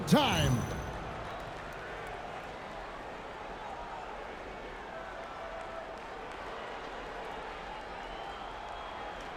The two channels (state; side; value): identical; both; correlation 1.00